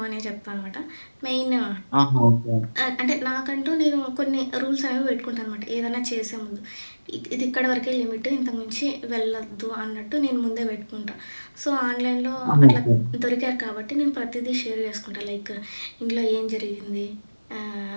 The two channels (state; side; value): inverted; both; correlation -1.00